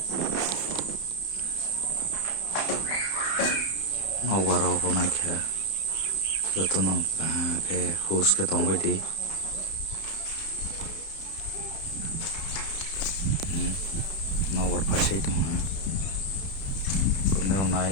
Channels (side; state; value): right; late; 31 ms